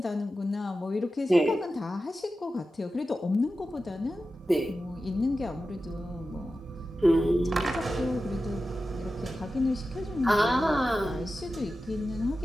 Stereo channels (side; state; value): both; normal; correlation 0.93